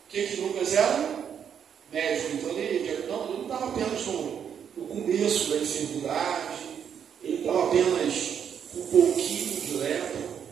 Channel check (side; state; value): left; quieter; 8.1 dB